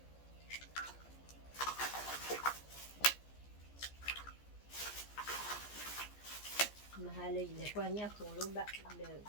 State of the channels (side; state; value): right; late; 14 ms